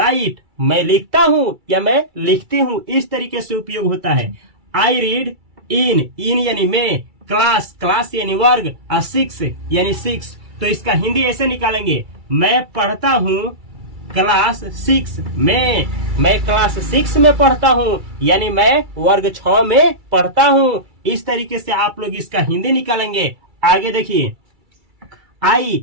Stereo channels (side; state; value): left; late; 2.3 ms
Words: मैं लिखता हूं या मैं लिखती हूं। इस तरीके से उपयोग होता है। आई रीड इन यानी मैं, क्लास यानी वर्ग, और सिक्स यानी सिक्स। तो इसका हिंदी ऐसे निकालेंगे मैं पढ़ता हूं क्लास 6 में। मैं क्लास 6 में पढ़ता हूं, यानी मैं वर्ग 6 में पढ़ता हूं। इस तरीके से आप लोग इसका हिंदी निकालेंगे। आगे देखिए